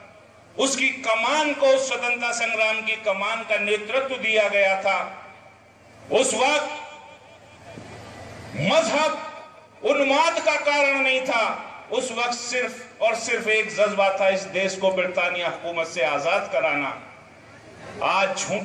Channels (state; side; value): identical; both; correlation 1.00